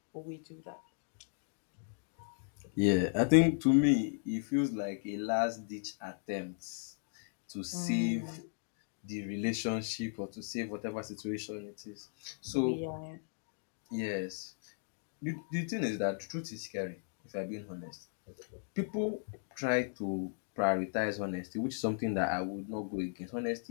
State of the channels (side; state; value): right; silent; digital silence